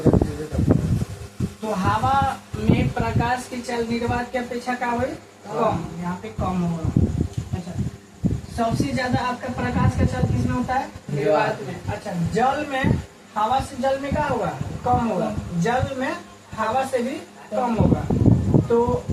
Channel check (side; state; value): both; identical; correlation 1.00